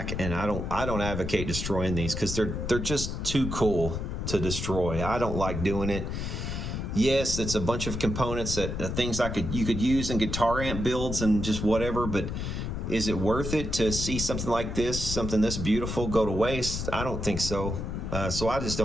and I don't advocate destroying these, because they're just too cool to destroy. I don't like doing it. Yes, it's a bunch of components that things you could use in guitar amp builds and just whatever, but is it worth it to see something like this, something this beautiful, go to waste? I don't think so. So I just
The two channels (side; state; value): left; noise; rumble, 4 dB below the sound